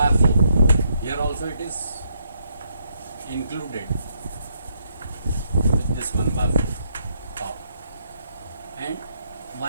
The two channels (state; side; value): inverted; both; correlation -0.74